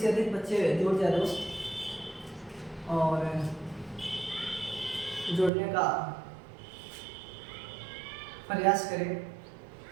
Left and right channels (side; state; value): left; drops out; at 5.5 s